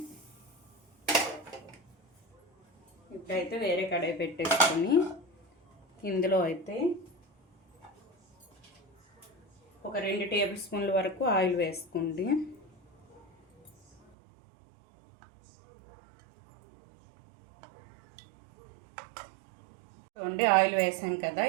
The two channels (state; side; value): drops out; left; at 14.0 s